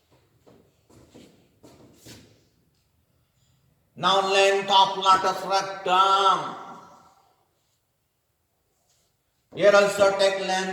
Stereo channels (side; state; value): both; identical; correlation 1.00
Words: Now length of lattice rectum. Here also take